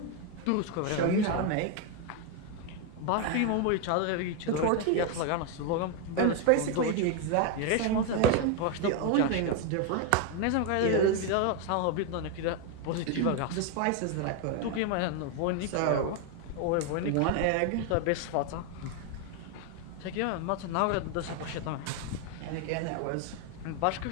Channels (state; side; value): different; both; correlation 0.01